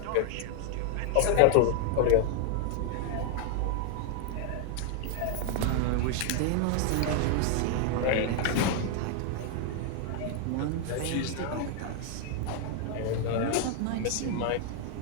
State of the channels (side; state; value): both; different; correlation 0.00